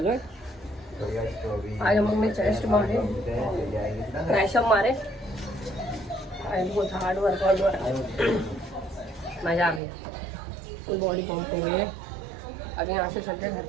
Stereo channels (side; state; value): left; drops out; at 9.8 s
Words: है। आज हम लोग ने चेस्ट मारे, ट्राइसेप मारे, बहुत हार्ड वर्कआउट हुआ, मजा आ गया, फुल बॉडी पंप हो गई है। अभी यहाँ से चलते घर